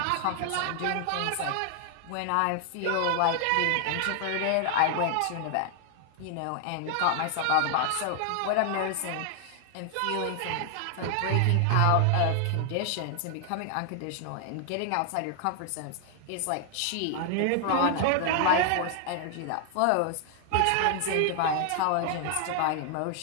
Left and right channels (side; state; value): both; different; correlation 0.00